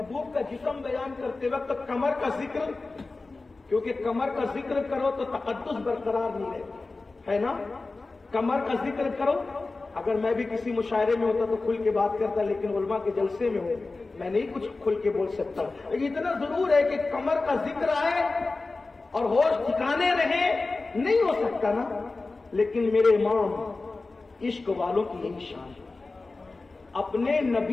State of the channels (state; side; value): quieter; right; 3.6 dB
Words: کا جسم بیان کرتے وقت کمر کا ذکر، کیونکہ کمر کا ذکر کرو تو تقدس برقرار نہیں رہتا ہے نا. کمر کا ذکر کرو. اگر میں بھی کسی مشاعرے میں ہوتا تو کھل کے بات کرتا، لیکن علماء کے جلسے میں ہوں میں نہیں کچھ کھل کے بول سکتا. لیکن اتنا ضرور ہے کہ کمر کا ذکر آئے اور ہوش ٹھکانے رہے نہیں ہو سکتا نا. لیکن میرے امام عشق والوں کی یہی شان ہے، اپنے